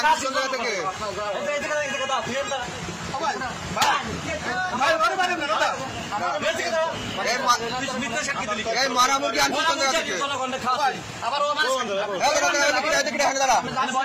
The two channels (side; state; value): both; identical; correlation 1.00